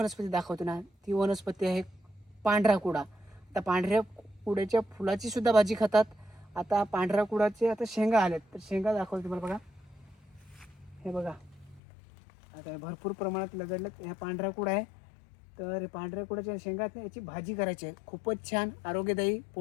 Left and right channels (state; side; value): drops out; right; at 11.8 s